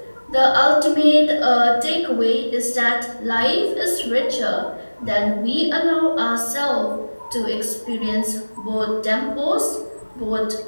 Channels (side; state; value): both; inverted; correlation -1.00